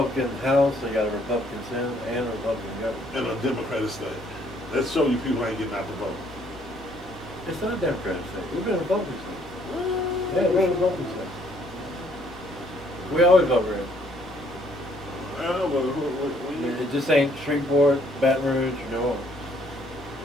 House, they got a Republican Senate, and a Republican government. in a Democratic state. Let's show you people ain't getting out the vote. It's not a Democratic state. We've been a Republican state. Yeah, we're a Republican state. We always vote red. It just ain't Shreveport, Baton Rouge, or New Orleans.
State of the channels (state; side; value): normal; both; correlation 0.65